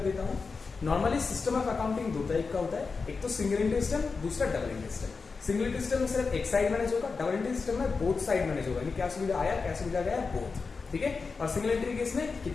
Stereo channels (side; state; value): right; quieter; 4.6 dB